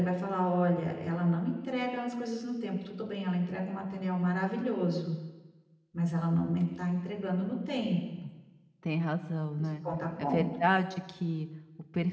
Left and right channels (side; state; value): both; identical; correlation 1.00